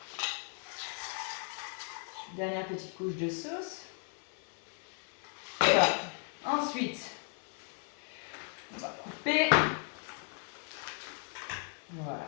Dernière petite couche de sauce. Voilà. Ensuite, on va couper. Voilà.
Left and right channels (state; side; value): quieter; right; 39.7 dB